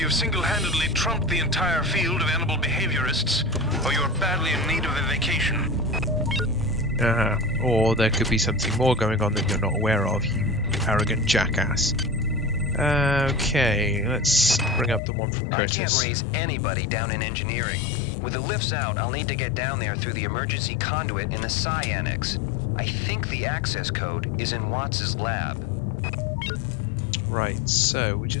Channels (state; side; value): drops out; right; at 15.0 s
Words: single-handedly trumped the entire field of animal behaviorists, or you're badly in need of a vacation. Or there could be something more going on that you're not aware of, you arrogant jackass. Okay, let's bring up the one from Curtis. I can't raise anybody down in engineering. With the lifts out, I'll need to get down there through the emergency conduit in the Psi Annex. I think the access code is in Watts' lab. Right, so we